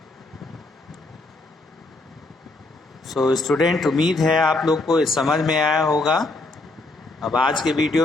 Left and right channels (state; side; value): quieter; right; 3.0 dB